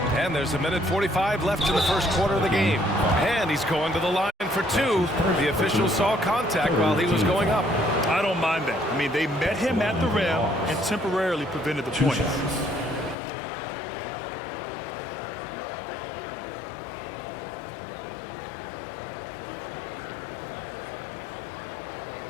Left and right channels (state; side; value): drops out; right; at 13.2 s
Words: And there's 1:45 left in the first quarter of the game. And he's going to the line for 2. The official saw contact while he was going up. I don't mind that. I mean, they met him at the rim and temporarily prevented the points.